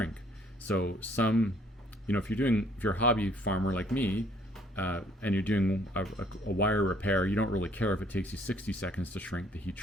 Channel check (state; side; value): normal; both; correlation 0.62